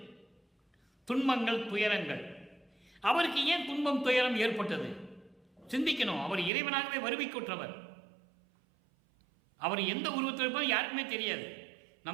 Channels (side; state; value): left; drops out; at 6.5 s